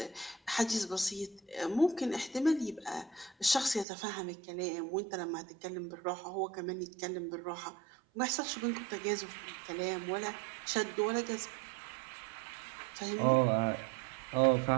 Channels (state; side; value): drops out; left; at 3.9 s